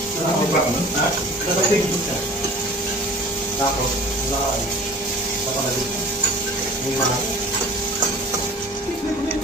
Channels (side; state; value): both; normal; correlation 0.44